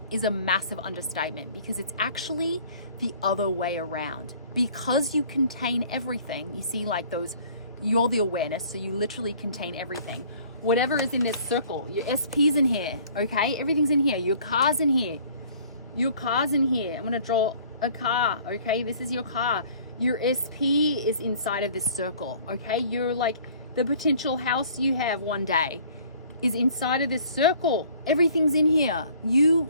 is a massive understatement, because it's actually the other way around. Because you contain everything, you see, like you're the awareness, so you literally contain everything. Whatever is in this circle, your SP's in here, okay? Everything's in here. Your car's in here. Your car's in here. I'm gonna draw a car, okay? This is your car. Your SP is inside of this circle, okay? You're like, the potential house you have one day is inside of this circle. Everything's in here. You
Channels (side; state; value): both; inverted; correlation -0.53